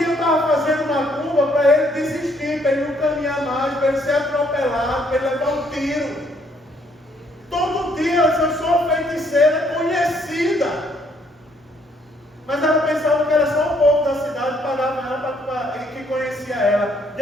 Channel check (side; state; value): both; normal; correlation 0.67